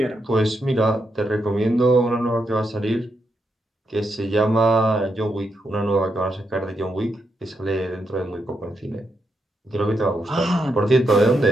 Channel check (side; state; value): both; normal; correlation 0.82